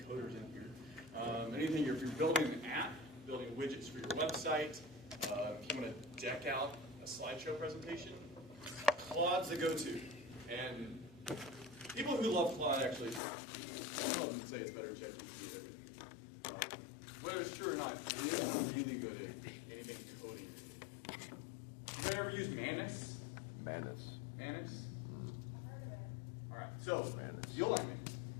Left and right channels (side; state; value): right; drops out; at 13.2 s